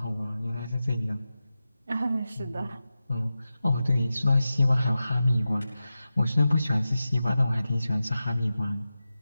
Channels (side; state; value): both; inverted; correlation -0.93